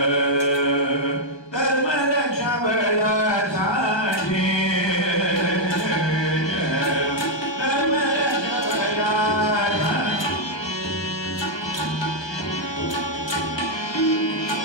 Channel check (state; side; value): late; right; 1.3 ms